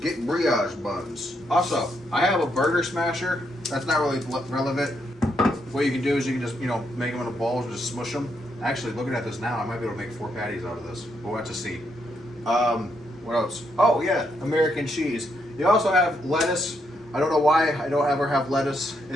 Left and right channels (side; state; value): both; normal; correlation 0.78